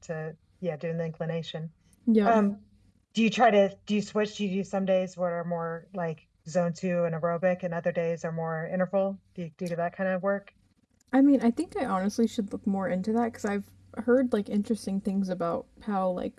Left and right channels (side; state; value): both; identical; correlation 1.00